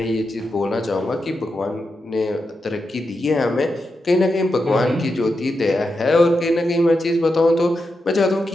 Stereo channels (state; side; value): normal; both; correlation 0.87